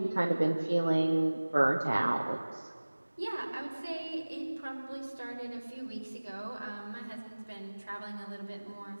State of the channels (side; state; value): both; inverted; correlation -1.00